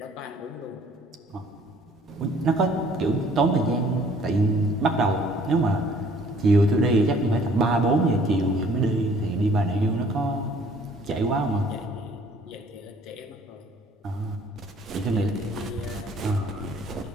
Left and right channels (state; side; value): normal; both; correlation 0.57